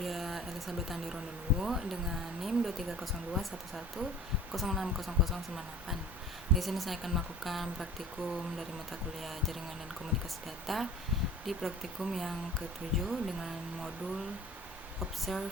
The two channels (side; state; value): both; normal; correlation 0.42